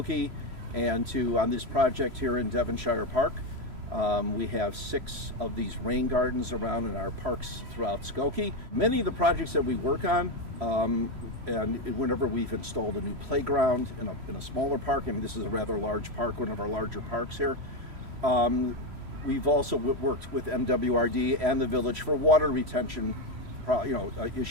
and on this project here in Devonshire Park. We have 6 of these rain gardens around in our parks throughout Skokie. Many of the projects that we work on, and whenever we've installed a new playground in a smaller park, and this is a rather large park, one of our larger parks here, we've also worked with MWRD and the village for water retention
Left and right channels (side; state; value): left; late; 3.0 ms